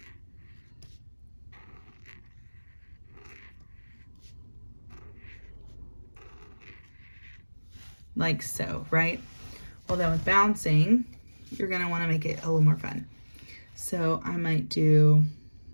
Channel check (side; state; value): both; inverted; correlation -1.00